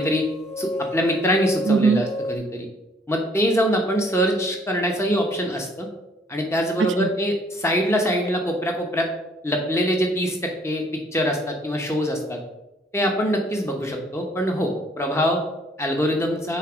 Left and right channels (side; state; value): both; normal; correlation 0.62